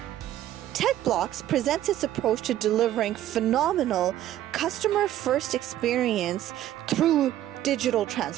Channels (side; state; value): left; quieter; 12.8 dB